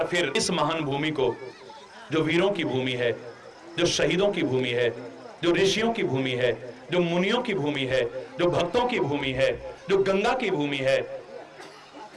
फिर इस महान भूमि को, जो वीरों की भूमि है, जो शहीदों की भूमि है, जो ऋषियों की भूमि है, जो मुनियों की भूमि है, जो भक्तों की भूमि है, जो गंगा की भूमि है,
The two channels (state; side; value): identical; both; correlation 1.00